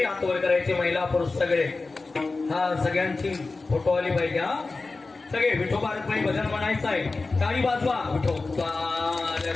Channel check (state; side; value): quieter; right; 3.7 dB